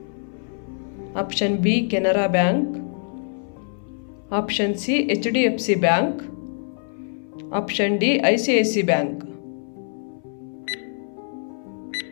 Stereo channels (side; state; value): right; silent; 58 dB below the other